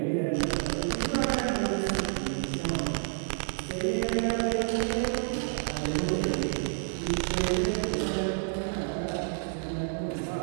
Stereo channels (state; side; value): silent; left; digital silence